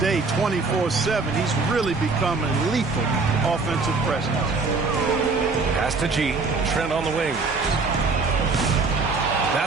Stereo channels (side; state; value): left; quieter; 4.1 dB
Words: 24/7. He's really become a lethal offensive presence. Pass to G. Trent on the wing.